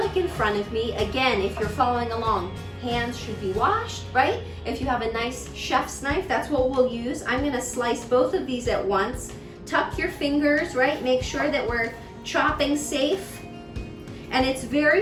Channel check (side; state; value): both; identical; correlation 1.00